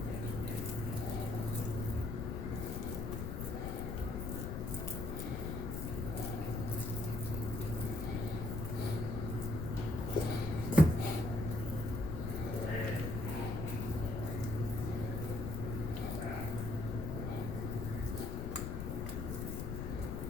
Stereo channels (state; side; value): noise; left; rumble, 3 dB below the sound